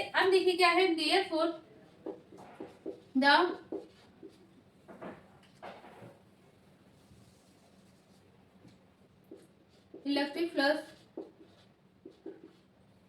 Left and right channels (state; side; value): identical; both; correlation 1.00